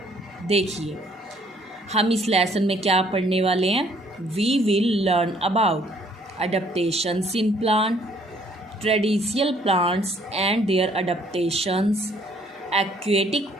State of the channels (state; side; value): normal; both; correlation 0.62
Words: देखिए, हम इस लेसन में क्या पढ़ने वाले हैं। We will learn about adaptations in plant, traditional plants and their adaptations, aquatic